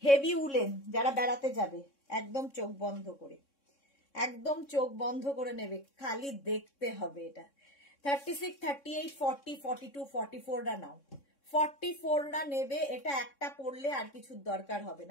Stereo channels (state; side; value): late; right; 3.6 ms